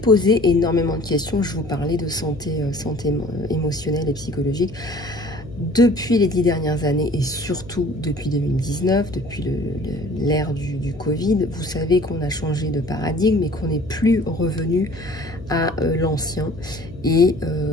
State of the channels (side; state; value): left; noise; hum, 16 dB below the sound